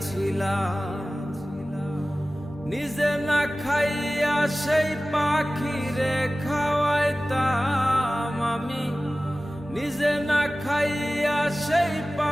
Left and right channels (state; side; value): normal; both; correlation 0.97